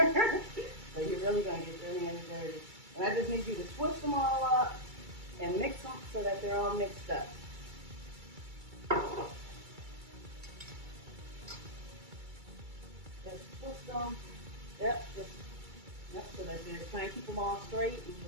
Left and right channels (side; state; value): left; late; 2.3 ms